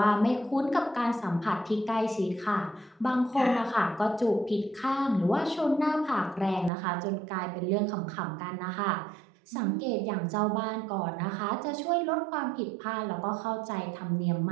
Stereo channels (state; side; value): drops out; left; at 6.7 s